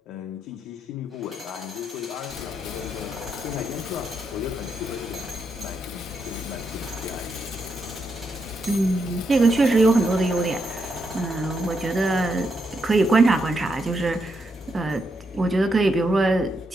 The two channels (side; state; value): both; normal; correlation 0.81